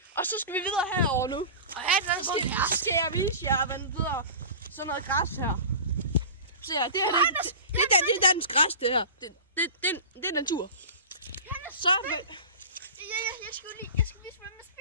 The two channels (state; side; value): inverted; both; correlation -0.34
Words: Og så skal vi videre herover nu. Så skal jeg vise jer, hvad den hedder. Sådan noget græs her. Se her, det er dansk græs, det her. Det er natur. Så... Jeg skal vise, hvordan man